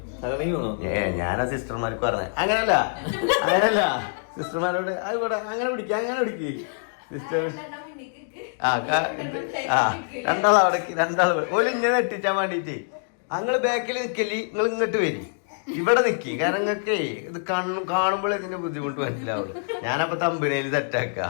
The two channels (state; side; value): silent; right; digital silence